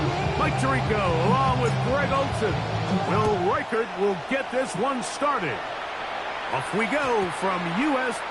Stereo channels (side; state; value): both; identical; correlation 1.00